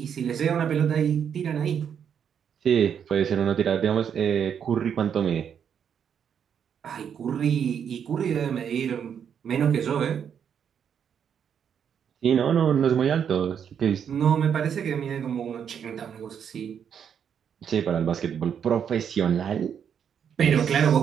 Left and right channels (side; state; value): left; quieter; 8.0 dB